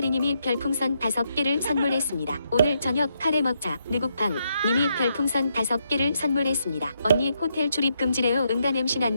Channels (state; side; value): inverted; both; correlation -0.79